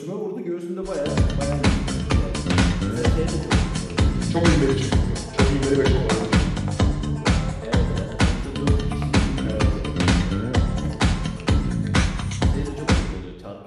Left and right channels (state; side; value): identical; both; correlation 1.00